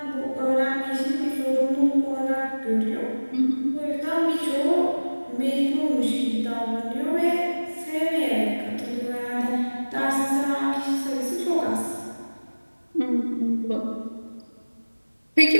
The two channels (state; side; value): inverted; both; correlation -1.00